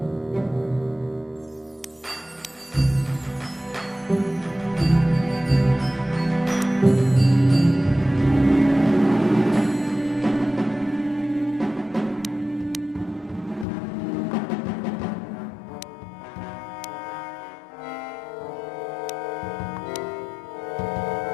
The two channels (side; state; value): right; drops out; at 13.7 s